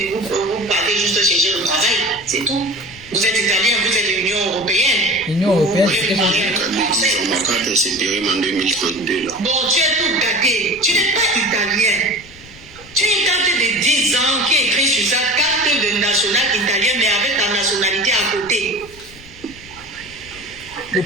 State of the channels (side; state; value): left; noise; rumble, 22 dB below the sound